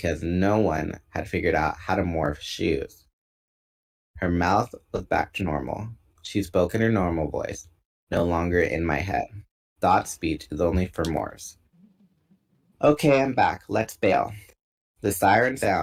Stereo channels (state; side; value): identical; both; correlation 1.00